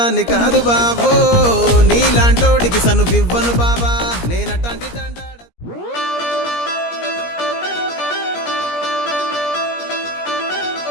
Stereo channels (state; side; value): late; right; 17 ms